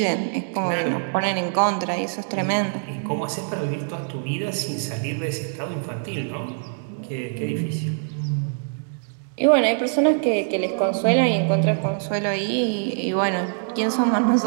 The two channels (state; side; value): silent; left; digital silence